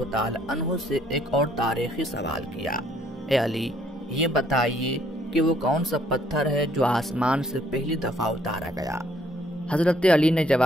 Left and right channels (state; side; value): normal; both; correlation 0.65